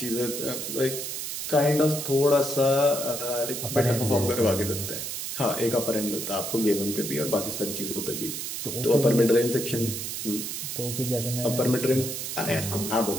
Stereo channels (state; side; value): noise; right; hiss, 5 dB below the sound